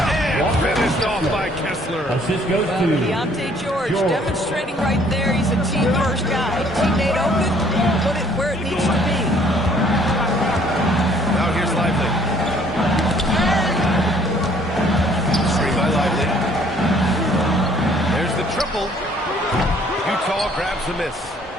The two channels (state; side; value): normal; both; correlation 0.60